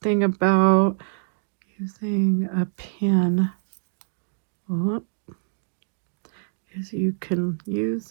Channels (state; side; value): silent; left; digital silence